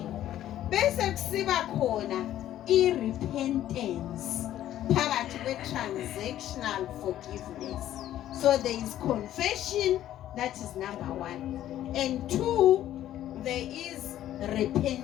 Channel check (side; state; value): right; quieter; 12.5 dB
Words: Bese kusiba khona i-repentance phakathi kwe-transactional forgiveness. So there is confession, that is number 1. And 2, there is